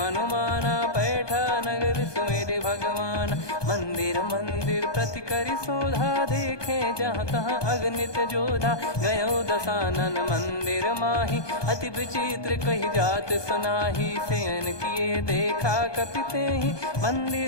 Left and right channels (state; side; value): late; right; 1.2 ms